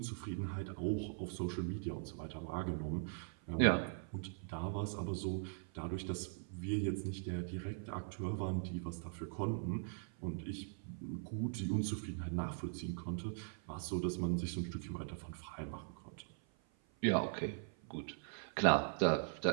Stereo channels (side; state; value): left; silent; 51 dB below the other